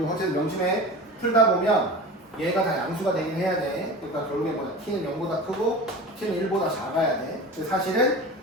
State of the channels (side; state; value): both; normal; correlation 0.34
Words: 어쨌든 명심해. 풀다 보면 얘가 다 양수가 되긴 해야 돼. 그러니까 결국에 뭐야? t는 0보다 크고 t는 1보다 작아야 돼. 사실은